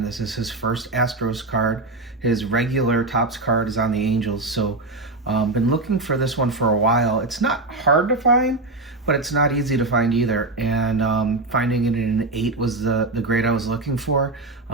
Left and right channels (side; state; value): left; quieter; 3.0 dB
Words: This is his first Astros card. His regular Topps card is on the Angels, so been looking for this one for a while. It's not hard to find, but it's not easy to find either, and finding it in an 8 was the grade I was looking for.